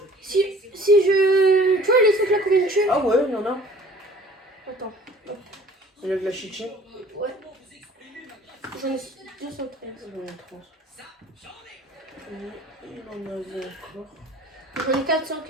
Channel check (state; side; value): normal; both; correlation 0.50